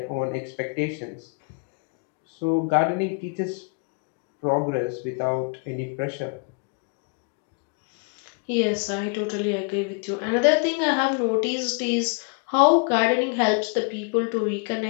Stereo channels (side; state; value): right; quieter; 36.1 dB